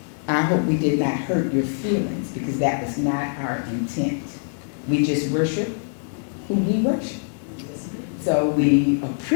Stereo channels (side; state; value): right; silent; digital silence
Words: I hope we did not hurt your feelings, because that was not our intent. We just worship who we worship. So we